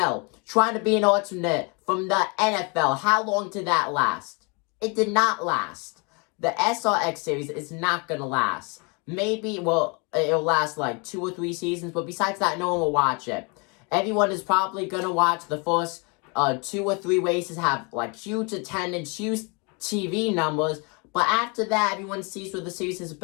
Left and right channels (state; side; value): quieter; right; 32.1 dB